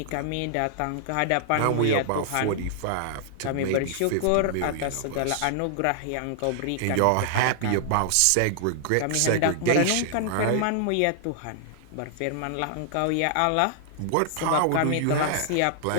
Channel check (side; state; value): both; different; correlation -0.01